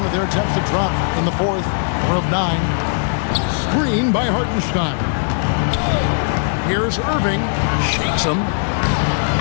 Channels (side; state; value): right; silent; 67 dB below the other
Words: of their attempts to drop in the fourth, 4 of 9. Screen by Hartenstein. Here's Irving. Shakes him.